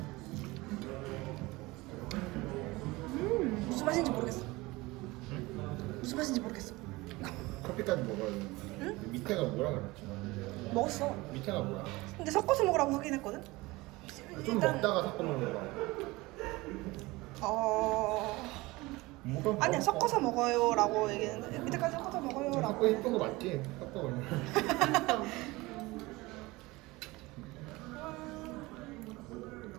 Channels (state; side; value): quieter; left; 21.6 dB